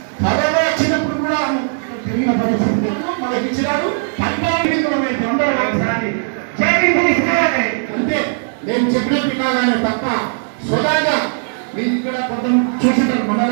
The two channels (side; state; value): left; silent; 68 dB below the other